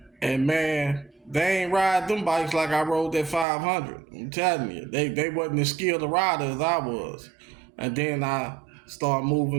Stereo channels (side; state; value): left; drops out; at 3.5 s